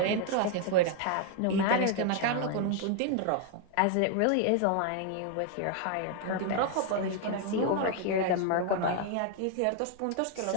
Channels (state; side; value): different; both; correlation 0.00